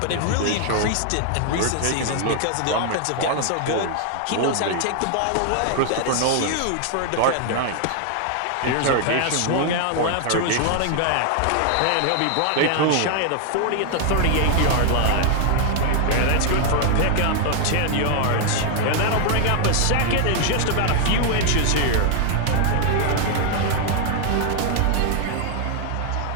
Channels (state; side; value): different; both; correlation 0.00